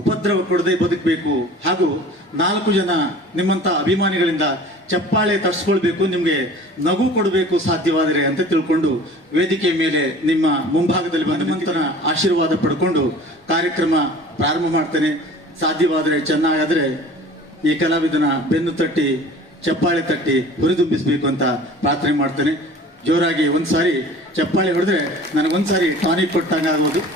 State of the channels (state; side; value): normal; both; correlation 0.44